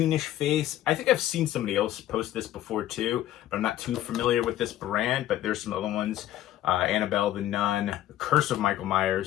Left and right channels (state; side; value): quieter; right; 13.2 dB